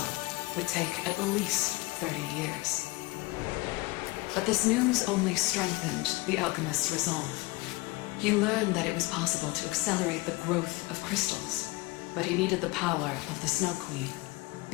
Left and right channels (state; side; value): quieter; right; 23.1 dB